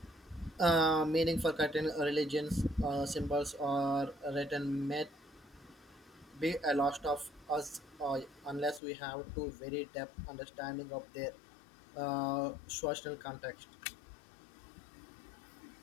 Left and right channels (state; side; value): drops out; right; at 8.8 s